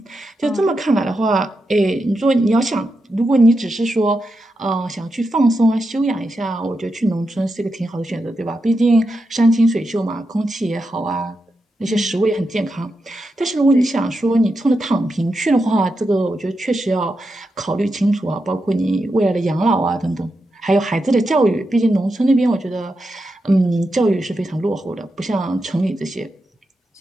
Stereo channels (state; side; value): normal; both; correlation 0.87